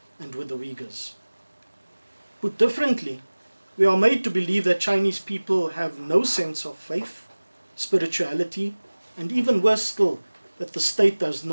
and with the Uyghurs. Put differently, we are made to believe that Chinese people have no sense of faith, spirituality, and even worse still, that the state does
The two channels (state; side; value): inverted; both; correlation -1.00